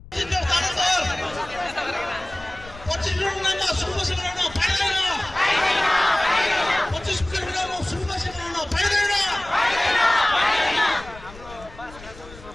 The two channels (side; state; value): left; noise; rumble, 18 dB below the sound